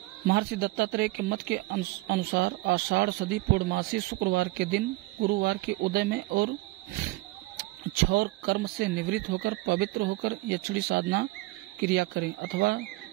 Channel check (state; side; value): quieter; left; 21.1 dB